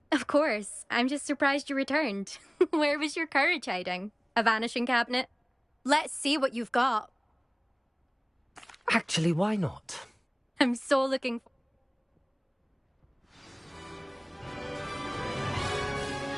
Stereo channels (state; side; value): identical; both; correlation 1.00